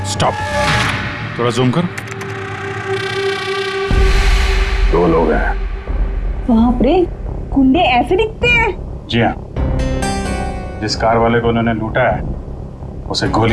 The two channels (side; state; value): both; identical; correlation 1.00